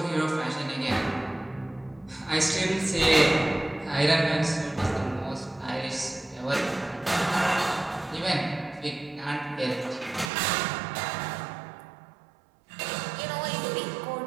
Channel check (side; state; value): left; drops out; at 10.3 s